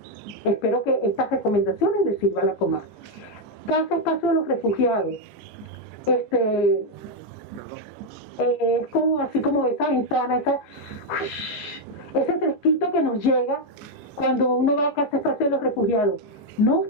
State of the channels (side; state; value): both; normal; correlation 0.02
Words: Espero que estas recomendaciones les sirvan a la Comar. Casa Espacio de los Refugiados. Es como así como esa ventana, ese fresquito que nos llega cuando uno va a Casa Espacio de los Refugiados. No